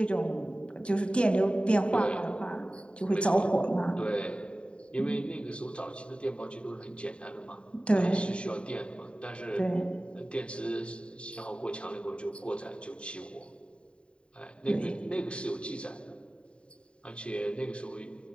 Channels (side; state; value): right; late; 0.056 ms